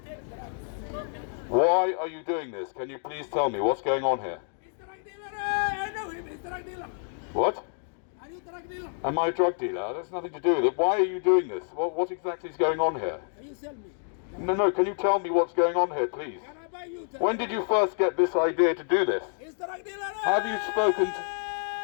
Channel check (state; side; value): silent; right; digital silence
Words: Why are you doing this? Can you please tell me what's going on here? What? Am I a drug dealer? That's nothing to do with it. Why are you doing this? What exactly is going on here? Can you tell me? No, can you tell me what's going on here, please? Can I buy you? When did you first get this idea to do this? Have